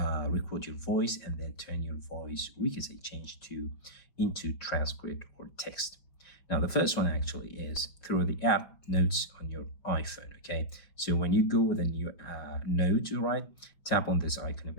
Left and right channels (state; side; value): late; right; 5.6 ms